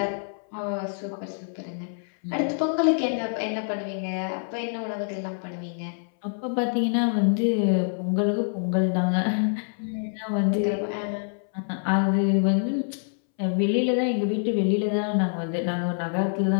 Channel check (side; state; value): right; silent; 61 dB below the other